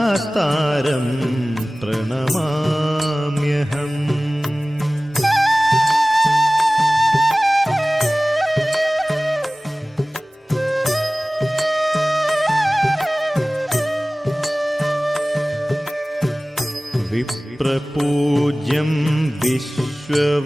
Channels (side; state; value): both; normal; correlation 0.98